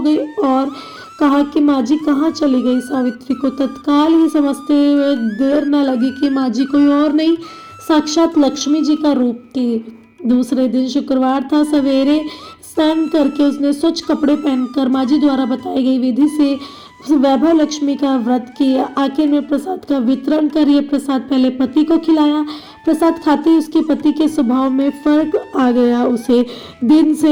गई और कहा कि माँ जी कहाँ चली गई। सावित्री को तत्काल ही समझते हुए देर न लगी कि माँ जी कोई और नहीं, साक्षात लक्ष्मी जी का रूप थी। दूसरे दिन शुक्रवार था। सवेरे स्नान करके उसने स्वच्छ कपड़े पहनकर माँ जी द्वारा बताई गई विधि से वैभव लक्ष्मी का व्रत किया। आखिर में प्रसाद का वितरण कर ये प्रसाद पहले पति को खिलाया। प्रसाद खाते ही उसके पति के स्वभाव में फर्क आ गया। उसे दिन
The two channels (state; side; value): identical; both; correlation 1.00